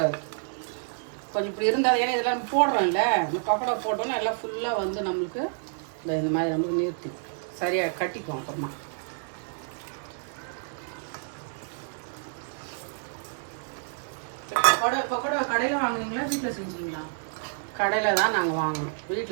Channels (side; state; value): left; silent; 59 dB below the other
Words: கொஞ்சம் இப்படி இருந்தால் ஏன்னா இதெல்லாம் போடுறோம்ல இந்த பக்கோடா போட்டோன்னா எல்லாம் ஃபுல்லாக வந்து நம்மளுக்கு இந்த மாதிரி நம்மளுக்கு நிறுத்தி சரியாக கட்டிக்குவோம். அப்புறமா பக்கோடா கடையில் வாங்குனீங்களா வீட்டில் செஞ்சீங்களா? கடையில் தான் நாங்கள் வாங்கணும்.